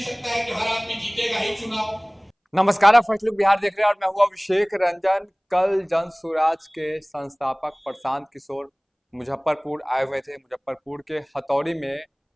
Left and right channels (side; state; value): both; identical; correlation 1.00